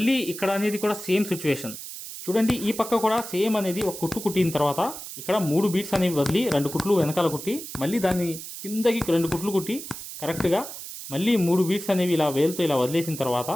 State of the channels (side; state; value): right; noise; hiss, 10 dB below the sound